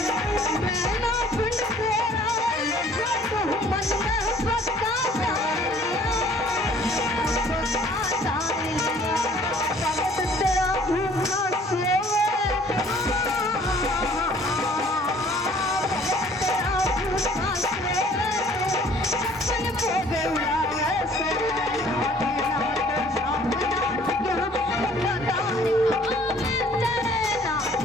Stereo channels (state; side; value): normal; both; correlation 0.55